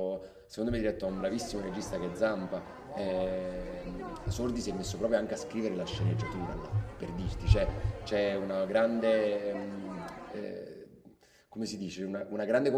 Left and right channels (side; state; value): both; identical; correlation 1.00